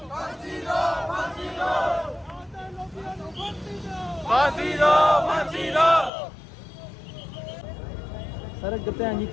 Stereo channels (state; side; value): drops out; right; at 6.1 s